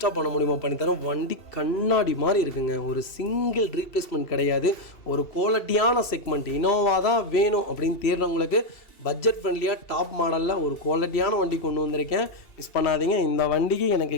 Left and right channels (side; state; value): right; late; 2.7 ms